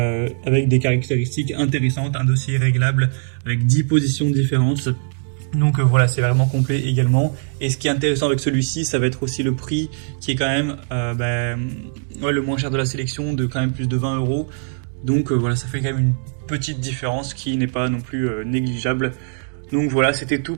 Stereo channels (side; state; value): left; silent; digital silence